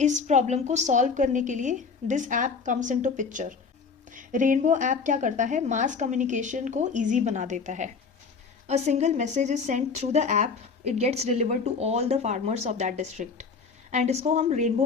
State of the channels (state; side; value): quieter; right; 5.1 dB